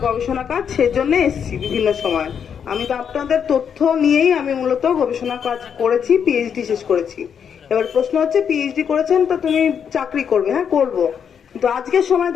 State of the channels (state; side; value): quieter; right; 7.6 dB